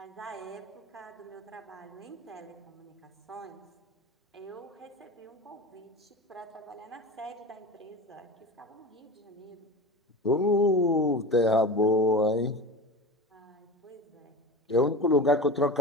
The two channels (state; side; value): normal; both; correlation 0.29